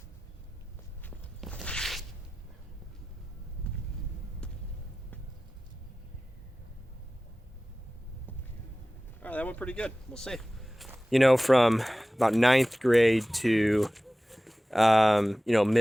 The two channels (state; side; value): normal; both; correlation 0.96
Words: All right, that went pretty good. We'll see. You know, from about 9th grade to you know,